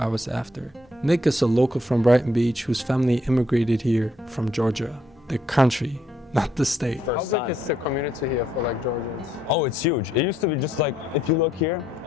after. Nick is a local from Brighton Beach whose family immigrated here from Georgia, the country, not the state. How big is the community here for like Georgians? Oh, it's huge. It used to be just like, if you look here,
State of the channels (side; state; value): both; normal; correlation 0.72